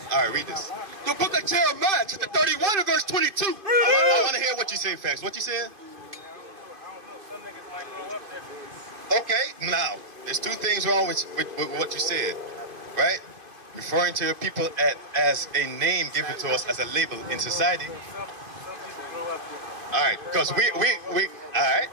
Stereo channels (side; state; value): left; late; 2.5 ms